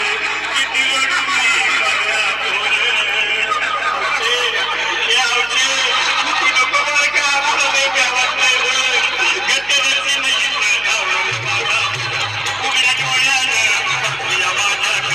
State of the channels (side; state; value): right; noise; hum, 24 dB below the sound